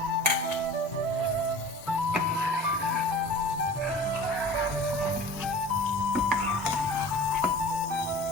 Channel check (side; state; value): both; normal; correlation 0.40